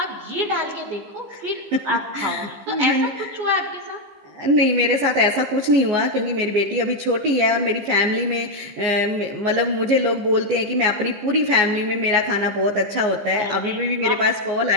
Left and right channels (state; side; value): late; left; 14 ms